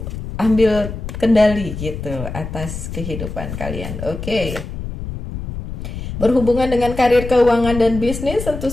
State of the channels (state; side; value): noise; left; rumble, 8 dB below the sound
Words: ambil kendali gitu atas kehidupan kalian. Oke. Berhubungan dengan karir, keuangan, dan bisnis, tentu